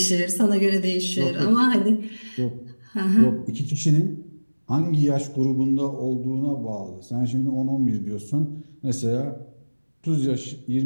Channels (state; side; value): inverted; both; correlation -1.00